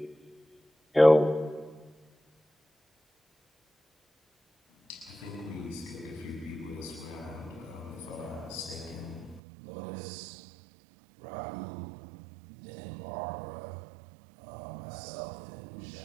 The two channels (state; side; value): drops out; left; at 9.4 s